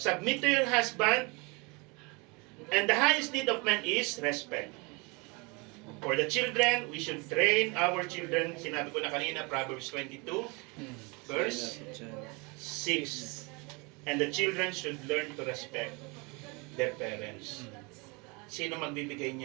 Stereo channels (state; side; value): quieter; left; 28.9 dB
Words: to your husband. And the highest need of man is respect. For the children, we should train our children. Sinabi ko na kanina, Proverbs 22, verse 6. And the children should learn to respect their parents. Sino magbibigay